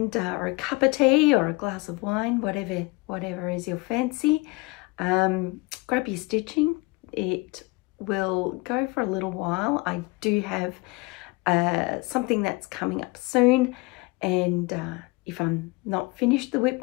or a cup of tea or a glass of wine, whatever is your fancy. Grab your stitching. It will go for a little while. I do have something that's coming up soon, and if I'm not finished the WIP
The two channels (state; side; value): quieter; right; 25.0 dB